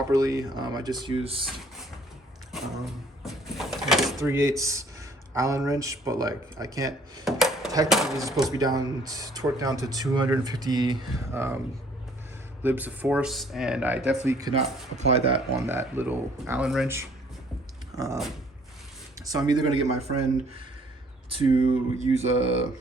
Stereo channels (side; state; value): both; normal; correlation 0.59